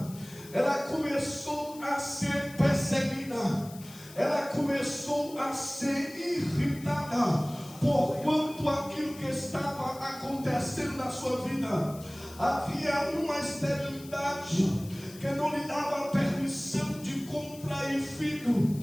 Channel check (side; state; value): left; noise; hiss, 19 dB below the sound